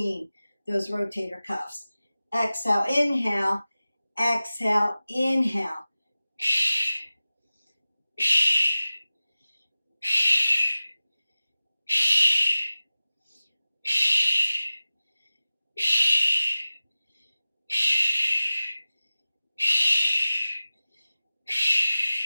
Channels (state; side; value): inverted; both; correlation -0.96